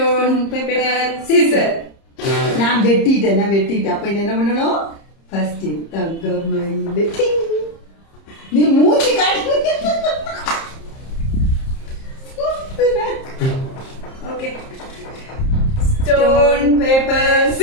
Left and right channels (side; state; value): right; late; 30 ms